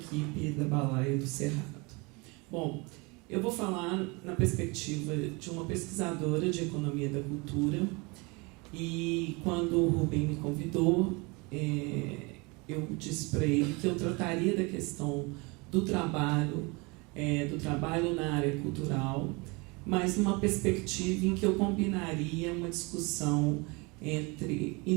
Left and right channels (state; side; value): quieter; left; 27.8 dB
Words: da Balaia do Cerrado. Bom, eu vou falar na perspectiva de uma pesquisadora de economia da cultura. E quando o Rubem me convidou, eu disse para ele que eu trataria da questão do trabalho na área cultural, mas numa perspectiva em que eu combinaria uma discussão entre